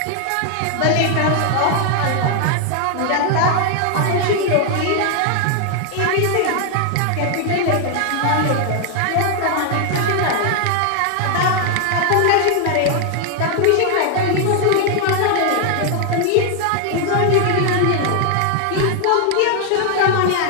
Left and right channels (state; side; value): different; both; correlation 0.00